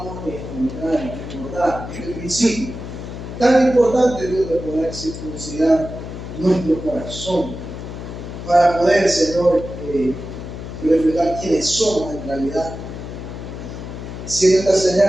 recordar este principio tan importante, Dios, de poder circuncidar nuestro corazón para poder, Señor, reflejar quiénes somos en realidad, siendo esta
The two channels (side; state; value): left; noise; hum, 9 dB below the sound